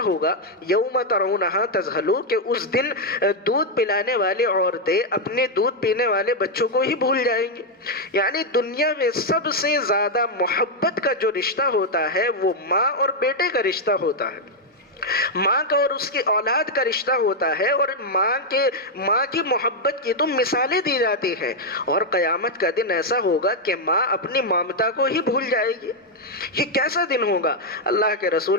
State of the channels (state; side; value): normal; both; correlation 0.00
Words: ہوگا یوم ترونہا تذہلو کہ اس دن دودھ پلانے والی عورتیں اپنے دودھ پینے والے بچوں کو ہی بھول جائیں گے. یعنی دنیا میں سب سے زیادہ محبت کا جو رشتہ ہوتا ہے وہ ماں اور بیٹے کا رشتہ ہوتا ہے، ماں کا اور اس کی اولاد کا رشتہ ہوتا ہے، اور ماں کی محبت کی تو مثالیں دی جاتی ہیں. اور قیامت کا دن ایسا ہوگا کہ ماں اپنی ممتا کو ہی بھول جائے گی. یہ کیسا دن ہوگا؟ اللہ کے